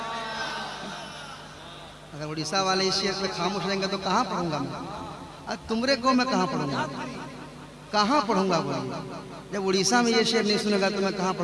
अगर उड़ीसा वाले इस शेर पे खामोश रहेंगे तो कहाँ पढ़ूंगा मैं? अब तुमरे को मैं कहाँ पढ़ूंगा, कहाँ पढ़ूंगा? जब उड़ीसा में ये शेर नहीं सुनेगा तो मैं कहाँ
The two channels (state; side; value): identical; both; correlation 1.00